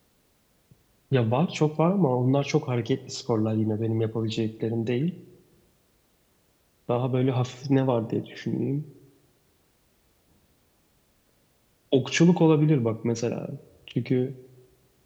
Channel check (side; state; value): both; identical; correlation 1.00